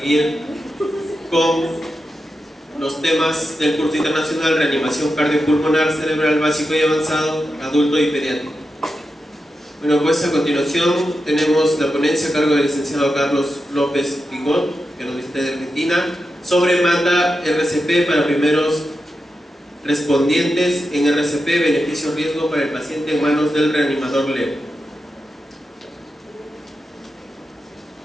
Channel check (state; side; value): normal; both; correlation 0.89